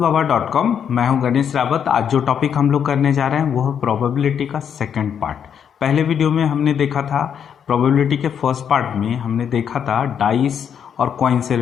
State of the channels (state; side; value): quieter; right; 8.1 dB